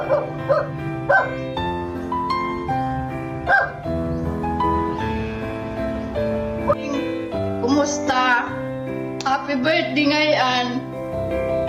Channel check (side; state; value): both; identical; correlation 1.00